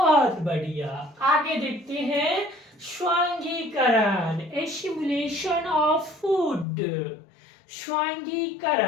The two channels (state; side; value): drops out; right; at 6.7 s